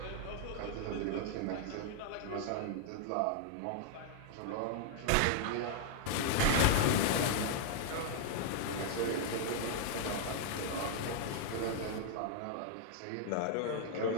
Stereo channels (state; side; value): different; both; correlation -0.01